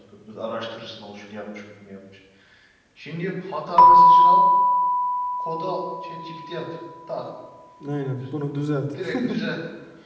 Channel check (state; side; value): identical; both; correlation 1.00